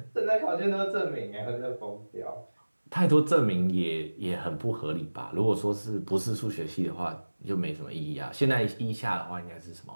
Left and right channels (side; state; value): both; inverted; correlation -1.00